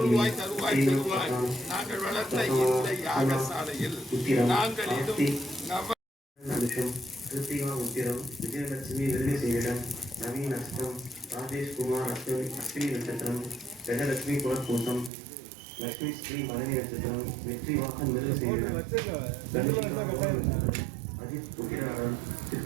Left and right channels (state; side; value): drops out; left; at 15.1 s